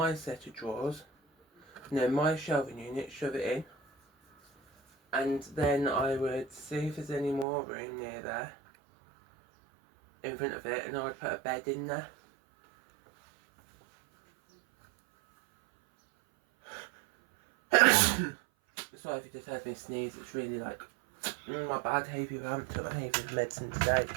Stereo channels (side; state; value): left; drops out; at 7.5 s